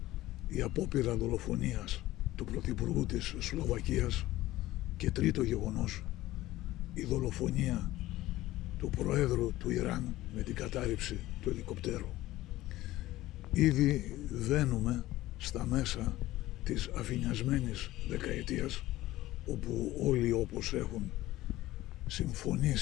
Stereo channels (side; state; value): right; quieter; 16.4 dB